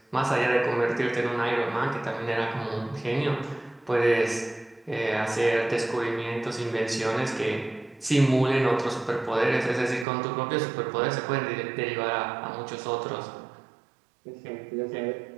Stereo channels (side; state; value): left; drops out; at 10.1 s